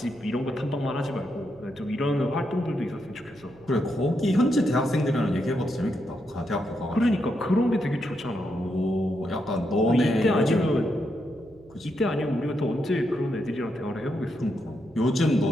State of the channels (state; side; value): noise; right; hum, 26 dB below the sound